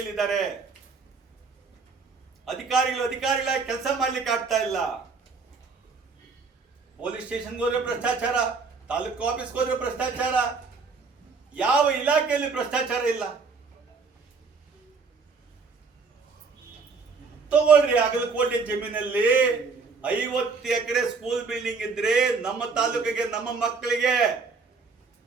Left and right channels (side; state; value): left; quieter; 4.6 dB